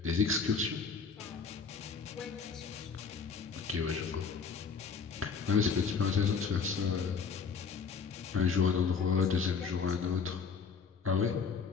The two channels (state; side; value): quieter; right; 5.7 dB